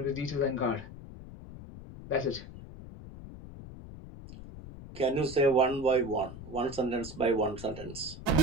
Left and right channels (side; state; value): left; noise; rumble, 14 dB below the sound